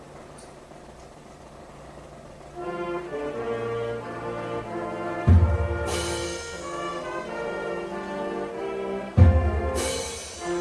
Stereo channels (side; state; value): both; identical; correlation 1.00